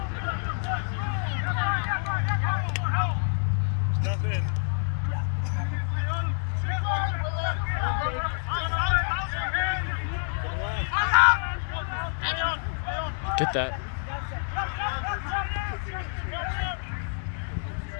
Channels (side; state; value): right; silent; 60 dB below the other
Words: Step in. Get that.